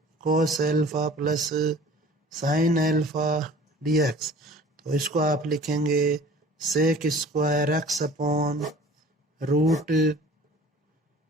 cos alpha plus sine alpha dx। तो इसको आप लिखेंगे sec square x upon root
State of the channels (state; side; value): normal; both; correlation 0.46